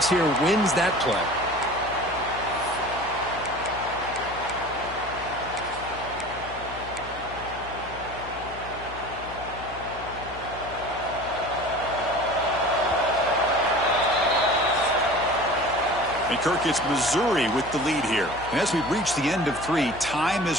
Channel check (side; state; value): left; noise; hum, 15 dB below the sound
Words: here wins that play. And Kirk, it's Missouri with the lead here. And as we reach the end of 3, time